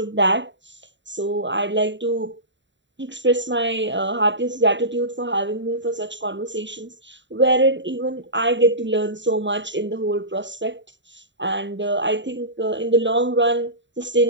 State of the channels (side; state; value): left; late; 0.53 ms